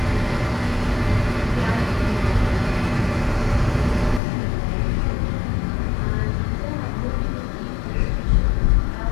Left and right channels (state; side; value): drops out; right; at 4.2 s